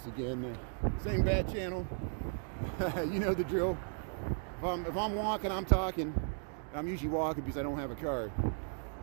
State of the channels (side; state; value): left; silent; 54 dB below the other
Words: again. Same bat channel. You know the drill. If I'm walking, I'm talking. I'm usually walking because I don't have a car.